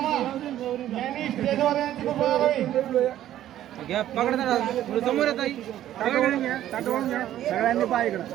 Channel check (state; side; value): quieter; left; 12.4 dB